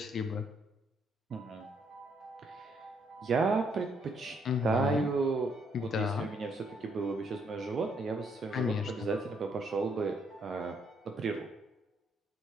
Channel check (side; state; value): both; normal; correlation 0.71